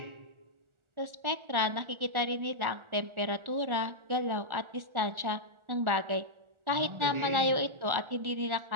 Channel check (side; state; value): left; late; 1.4 ms